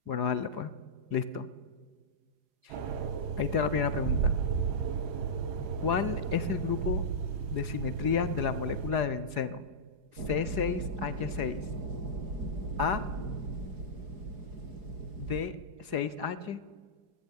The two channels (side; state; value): left; late; 4.8 ms